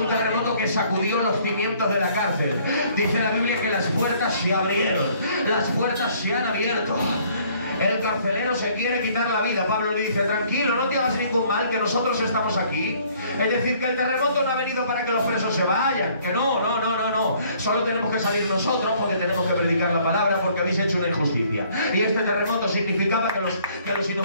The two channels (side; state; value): both; inverted; correlation -0.60